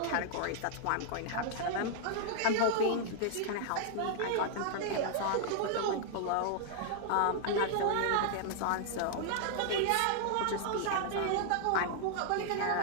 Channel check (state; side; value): different; both; correlation -0.01